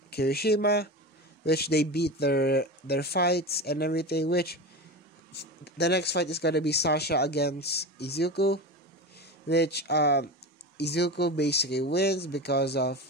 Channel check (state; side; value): normal; both; correlation 0.26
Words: Kirishima, which they beat their fights and everything, which the next fight is gonna be Sasha against Izuku, which Izuku basically wins because of